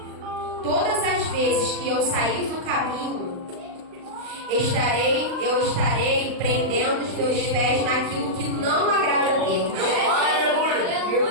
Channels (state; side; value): late; left; 39 ms